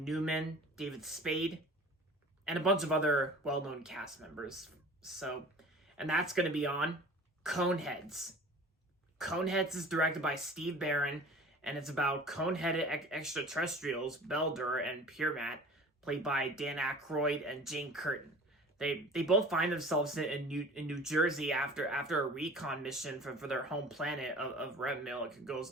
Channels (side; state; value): both; normal; correlation 0.44